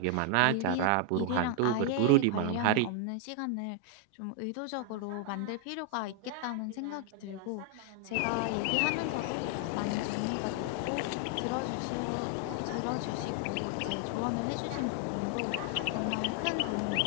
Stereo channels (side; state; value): both; different; correlation 0.00